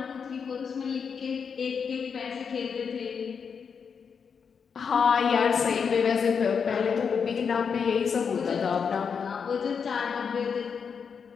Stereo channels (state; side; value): quieter; right; 6.3 dB